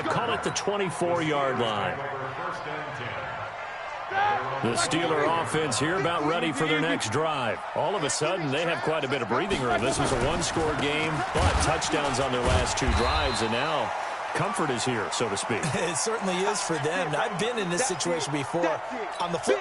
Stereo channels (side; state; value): both; identical; correlation 1.00